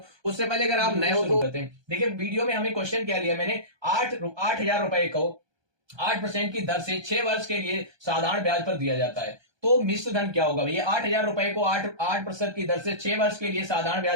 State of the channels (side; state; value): left; late; 1.2 ms